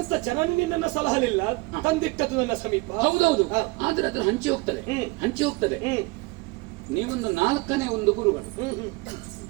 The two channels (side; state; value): left; quieter; 24.7 dB